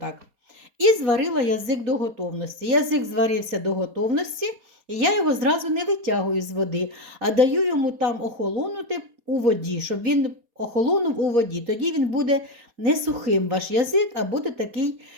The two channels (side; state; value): left; late; 4.2 ms